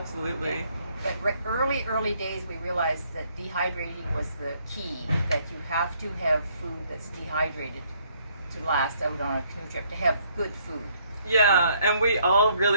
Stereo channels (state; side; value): inverted; both; correlation -0.67